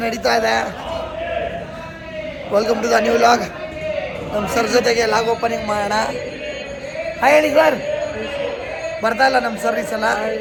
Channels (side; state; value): both; identical; correlation 1.00